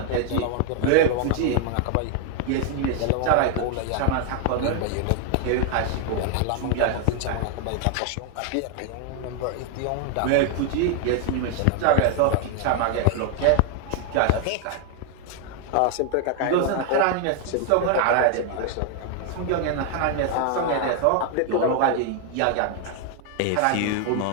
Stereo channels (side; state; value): both; different; correlation 0.01